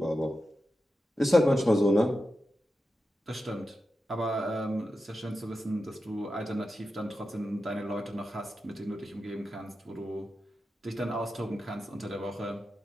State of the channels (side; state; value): both; normal; correlation 0.90